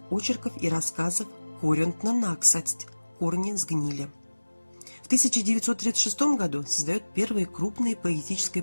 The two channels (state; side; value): inverted; both; correlation -1.00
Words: очерков и рассказов «Корентна наксасть. Корни сгнили». В 1936 году создает первое крупное поэтическое